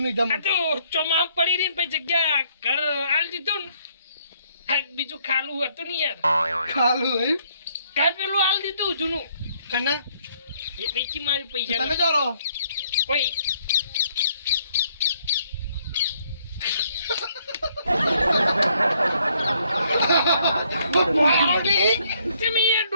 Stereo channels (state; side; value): inverted; both; correlation -0.68